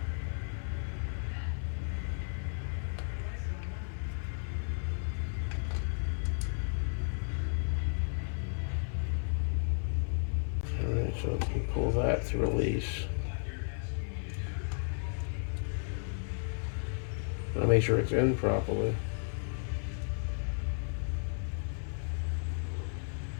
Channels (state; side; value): silent; right; 55 dB below the other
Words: alright, so we can pull that to release. I'll make sure it's in properly.